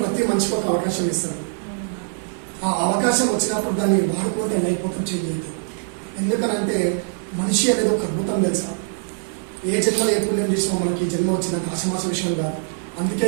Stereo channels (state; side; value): silent; left; digital silence